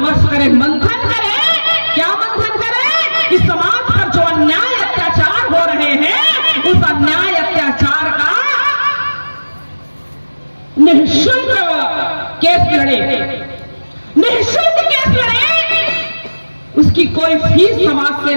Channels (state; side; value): inverted; both; correlation -1.00